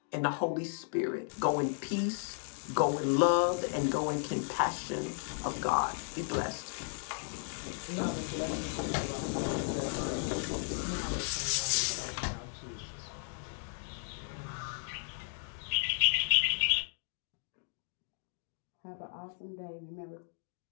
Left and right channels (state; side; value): silent; right; digital silence